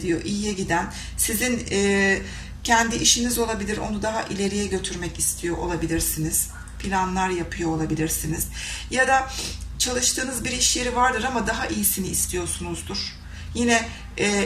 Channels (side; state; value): both; identical; correlation 1.00